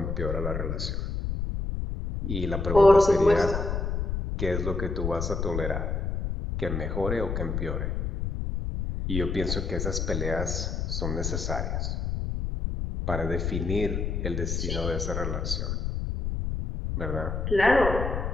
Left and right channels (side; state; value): left; noise; rumble, 2 dB below the sound